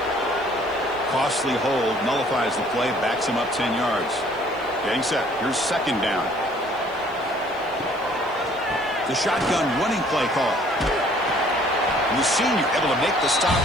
Costly hold, nullifies the play, backs him up 10 yards. Getting set. Here's second down. The shotgun running play call. And the senior able to make the stop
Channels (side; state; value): left; noise; hiss, 29 dB below the sound